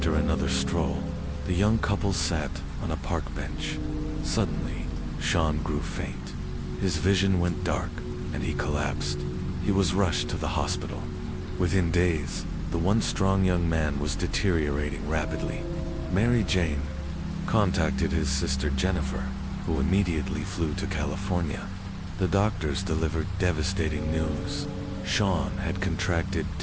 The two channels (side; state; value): both; identical; correlation 1.00